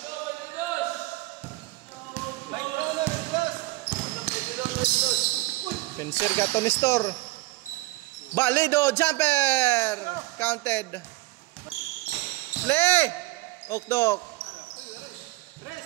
Penser ka to Nestor. Balido, jumper. Counted. Play. Okdok.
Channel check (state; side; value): quieter; left; 20.6 dB